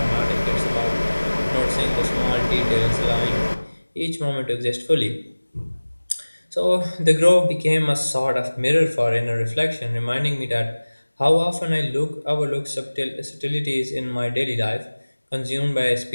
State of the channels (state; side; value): inverted; both; correlation -1.00